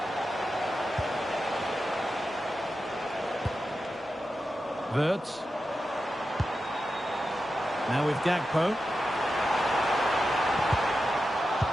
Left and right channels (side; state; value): both; normal; correlation 0.90